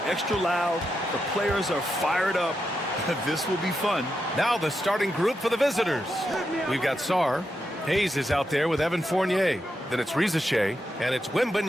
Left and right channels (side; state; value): both; normal; correlation 0.85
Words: extra loud. The players are fired up. This will be fun. Now the starting group for the visitors. We've got Sarr. Hayes is out there with Evan Fournier. Then it's Rizashay, and it's